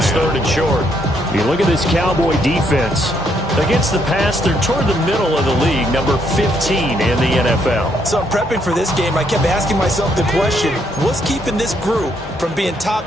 3rd and short. You look at this Cowboy defense. Against the pass, they're toward the middle of the league, number 15 in the NFL. So I'm prepping for this game. I kept asking myself the question, what's keeping this group from being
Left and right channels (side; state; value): both; normal; correlation 0.73